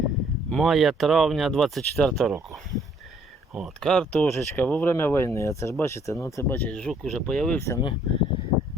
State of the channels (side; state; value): both; normal; correlation 0.63